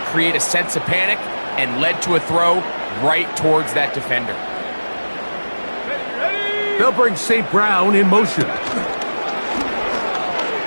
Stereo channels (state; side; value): inverted; both; correlation -1.00